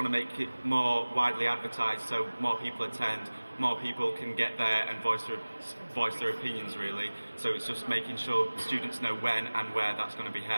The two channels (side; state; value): both; inverted; correlation -1.00